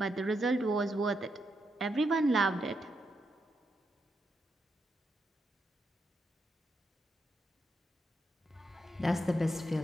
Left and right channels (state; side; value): normal; both; correlation 0.82